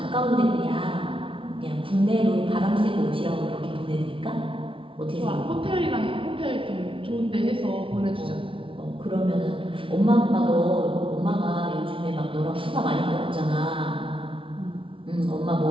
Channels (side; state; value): left; late; 0.25 ms